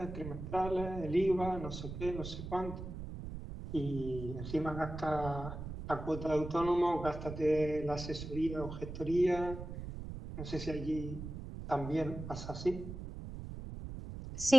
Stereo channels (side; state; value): right; noise; rumble, 8 dB below the sound